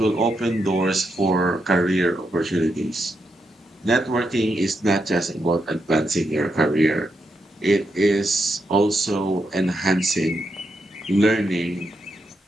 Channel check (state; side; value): normal; both; correlation 0.83